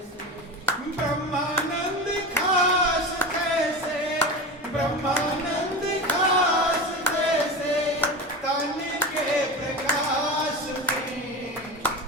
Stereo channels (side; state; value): both; normal; correlation 0.26